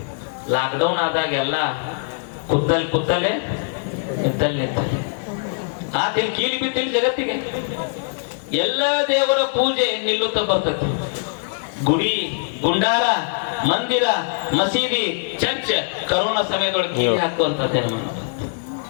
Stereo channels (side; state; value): right; silent; digital silence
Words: ಲಾಕ್ಡೌನ್ ಆದಾಗ ಎಲ್ಲ ಕುತ್ತಲೆ ನಿಂತಲ್ಲಿ ಆತೇನು ಕೀಲಿ ಬಿದ್ದಿಲ್ಲ ಜಗತ್ತಿಗೆ. ಎಲ್ಲ ದೇವರ ಪೂಜೆ ನಿಲ್ಲುತ್ತಾ ಬರ್ತದೆ. ಗುಡಿ ಗುಂಡಾರ ಮಂದಿರ ಮಸೀದಿ ಚರ್ಚ್ ಕರೋನಾ ಸಮಯದೊಳಗೆ ಕೀಲಿ ಹಾಕುವಂತದ್ದೇನು.